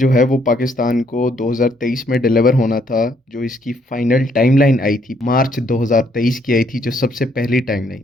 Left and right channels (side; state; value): both; normal; correlation 0.70